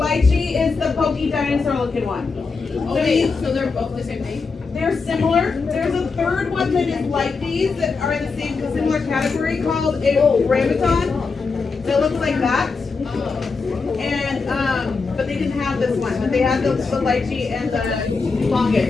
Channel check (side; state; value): right; quieter; 4.6 dB